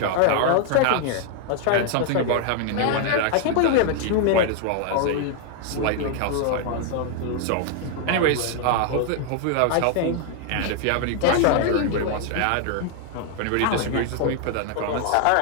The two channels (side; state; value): both; different; correlation 0.00